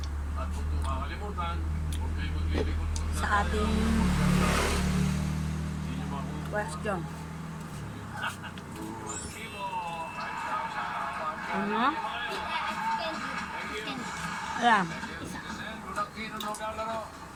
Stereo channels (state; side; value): identical; both; correlation 1.00